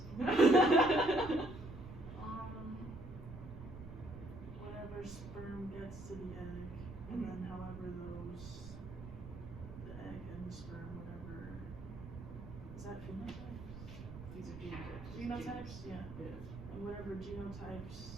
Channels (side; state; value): right; noise; rumble, 12 dB below the sound